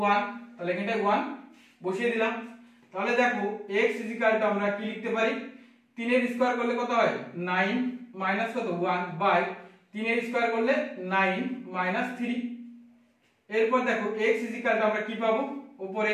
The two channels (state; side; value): identical; both; correlation 1.00